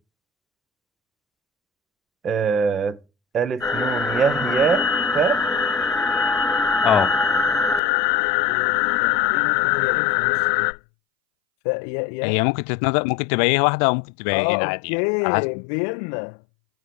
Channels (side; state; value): right; drops out; at 7.8 s